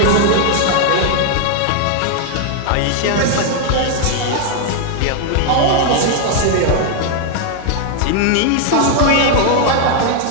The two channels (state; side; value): different; both; correlation 0.00